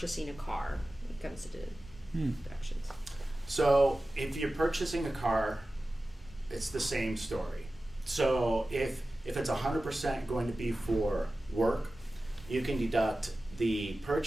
a car when it comes to deductions. So if you're purchasing a car, it's the same story. So if it's 100% going to be for work, you can deduct the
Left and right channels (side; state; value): both; normal; correlation 0.95